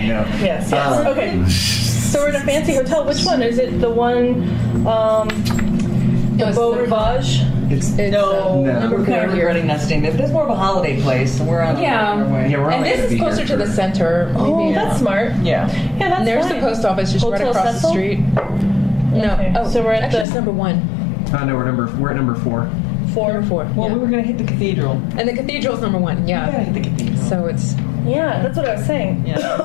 Yes. Okay. So we're in a fancy hotel. Which one? Is it the one, the Beau Rivage? It's No, No. we're currently running that thing. That's more of a holiday place, and we're on Yeah. our way. Yeah, we're And only this gonna is be closer here to the for- center. Oh, Maybe. that's smart. Yeah. Yeah, that's And there's fine. the post office just Hotel right across Cecil? the street. No. Okay, Oh, so we're at actually, the- it's number 1. No, we're at number 4. Number 4. Well, yeah. we were gonna hit the cathedral. And the cathedral's number 1. We gotta Yeah. hit the cathedral. So it's Yeah, that's what I was saying. Yeah.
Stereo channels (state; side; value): drops out; right; at 20.2 s